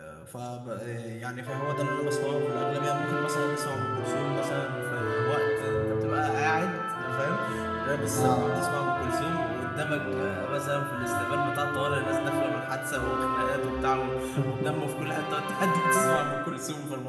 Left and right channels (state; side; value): identical; both; correlation 1.00